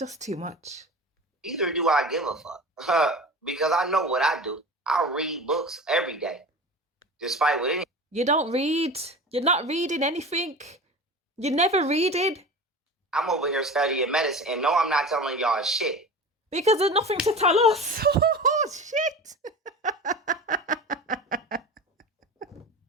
too much. Either do I give a fuck. Because I know what I do. I read books every day. Despite what any... You don't read. You're not reading anything. You never reading. I'm over here studying medicine, and no, I'm not telling y'all shit. Because there's nothing to tell us. Oh, shit.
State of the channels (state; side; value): normal; both; correlation 0.33